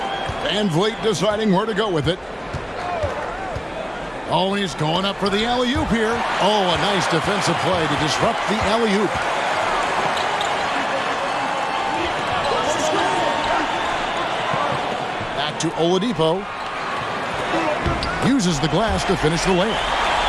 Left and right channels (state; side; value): identical; both; correlation 1.00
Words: Van Vliet deciding where to go with it. Oh, and he's going up for the alley-oop here. Oh, a nice defensive play to disrupt the alley-oop. Back to Oladipo. Uses the glass to finish the layup.